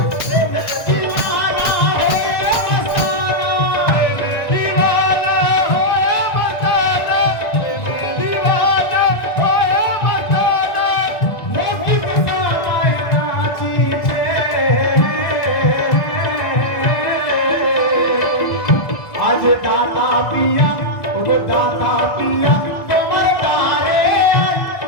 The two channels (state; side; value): late; right; 1.5 ms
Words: आज दाता पिया, ओगो दाता पिया तुम्हारे तारे,